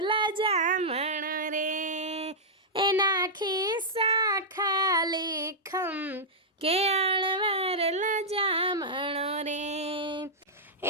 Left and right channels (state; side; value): normal; both; correlation -0.08